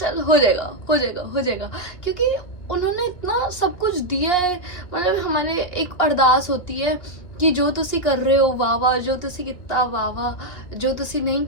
हो जाएगा, क्योंकि उन्होंने इतना सब कुछ दिया है। मतलब हमारे एक अरदास होती है कि जो तुसी कर रहे हो वाह वाह, जो तुसी कितना वाह वाह, जो तुसी नहीं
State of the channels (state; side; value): late; right; 2.6 ms